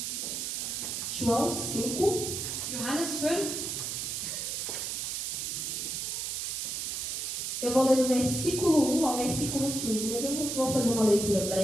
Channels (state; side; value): noise; right; hiss, 3 dB below the sound